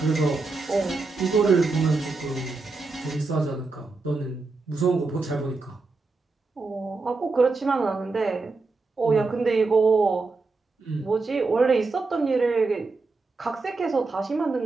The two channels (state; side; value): quieter; left; 3.8 dB